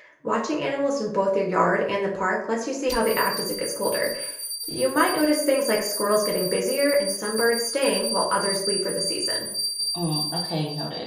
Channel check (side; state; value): both; identical; correlation 1.00